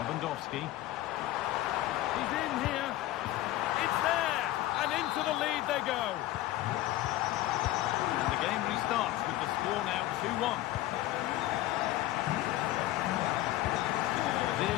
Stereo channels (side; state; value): right; quieter; 15.6 dB